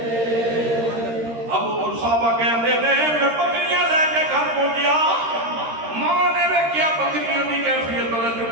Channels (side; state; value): left; late; 13 ms